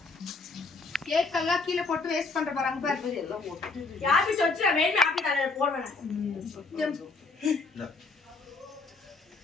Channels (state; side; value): quieter; right; 3.9 dB